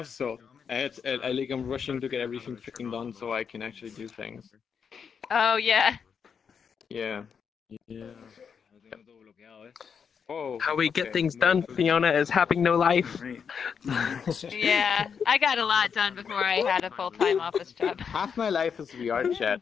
So I'm rushing to get everything freaking done so I can actually do things. Oh yeah. Yeah. Oh, How we get okay. things done, Fiona, is having no life. Yeah. I got a lot done before I had a full-time office job. Half my life is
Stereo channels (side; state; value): right; quieter; 6.7 dB